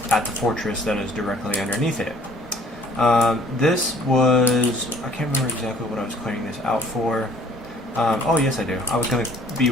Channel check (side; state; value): both; normal; correlation 0.55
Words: at the fortress that is directly underneath it. This was, I can't remember exactly what I was clearing this out for. Oh yes I do. I was going to be